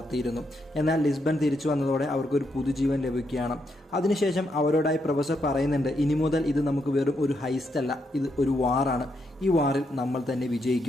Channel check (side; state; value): both; normal; correlation 0.79